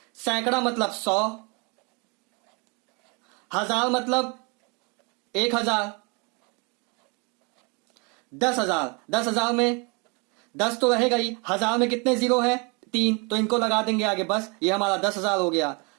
सैकड़ा मतलब 100। हजार मतलब 1000। 10,000, 10,000 में 10 तो रहेगा ही। हजार में कितने जीरो है? 3, तो इनको लगा देंगे आगे, बस ये हमारा 10,000 हो गया।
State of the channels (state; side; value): quieter; left; 31.8 dB